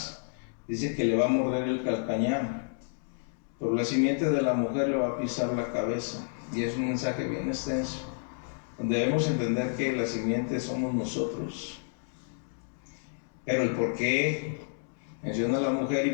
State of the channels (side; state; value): right; silent; digital silence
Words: dice que le va a morder el calcañar, pero la simiente de la mujer le va a pisar la cabeza. Y es un mensaje bien extenso, donde debemos entender que la simiente somos nosotros. Pero el por qué menciona a la mujer y